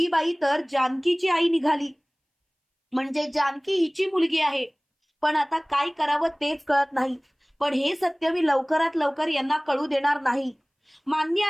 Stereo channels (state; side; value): identical; both; correlation 1.00